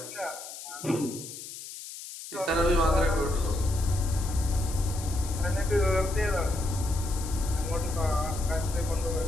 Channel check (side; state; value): left; noise; hiss, 12 dB below the sound